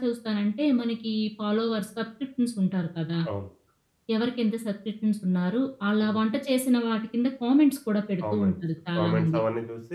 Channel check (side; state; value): both; identical; correlation 1.00